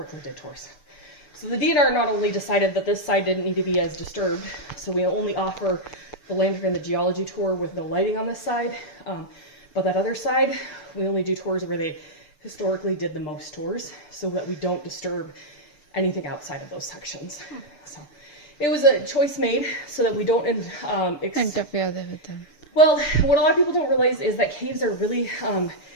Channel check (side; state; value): right; late; 6.8 ms